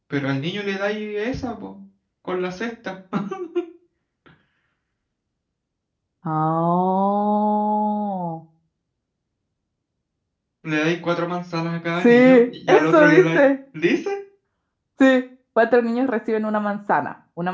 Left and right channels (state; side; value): identical; both; correlation 1.00